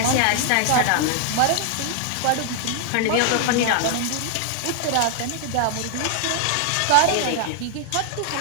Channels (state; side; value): different; both; correlation 0.00